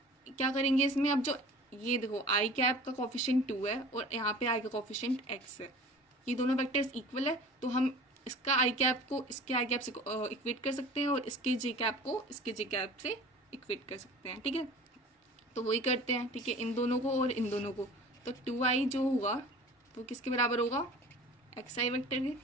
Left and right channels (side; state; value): both; normal; correlation 0.43